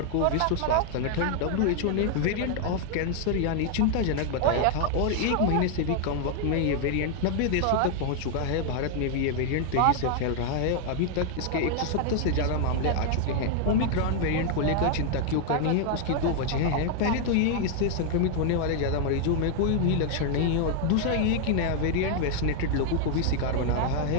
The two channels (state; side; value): different; both; correlation 0.00